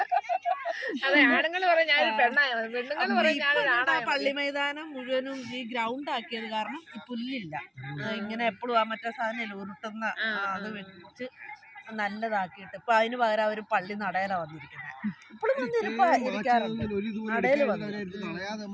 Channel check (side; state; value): both; identical; correlation 1.00